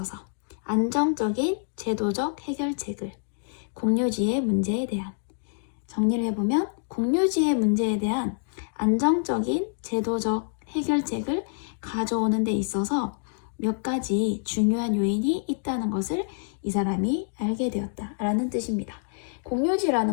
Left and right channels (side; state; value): right; silent; digital silence